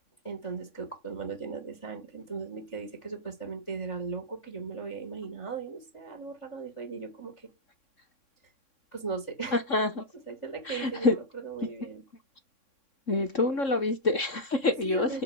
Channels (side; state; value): right; late; 3.7 ms